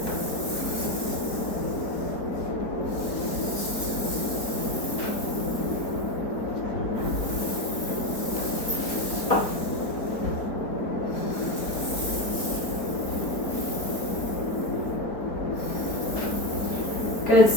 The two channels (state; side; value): late; right; 4.1 ms